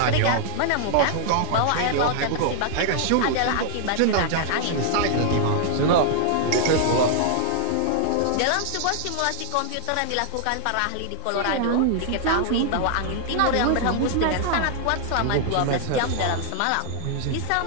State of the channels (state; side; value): different; both; correlation 0.00